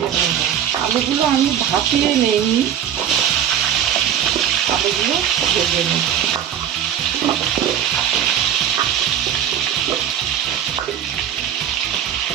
নেব। আলুগুলো আমি ভাপিয়ে নেই, আলুগুলো ভেজে নেব।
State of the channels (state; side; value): quieter; left; 9.6 dB